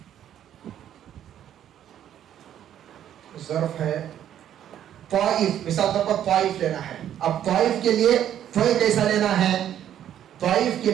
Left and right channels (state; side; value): quieter; left; 10.6 dB